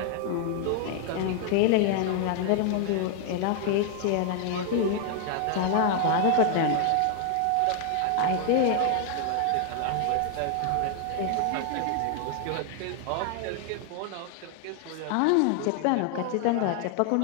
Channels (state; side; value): different; both; correlation 0.00